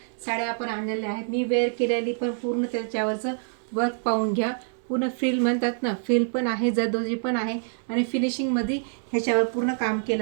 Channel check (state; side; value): silent; left; 61 dB below the other